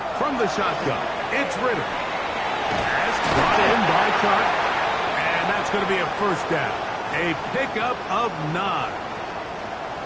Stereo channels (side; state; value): both; identical; correlation 1.00